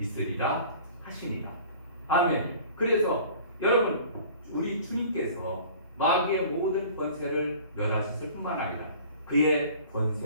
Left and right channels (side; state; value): both; inverted; correlation -0.46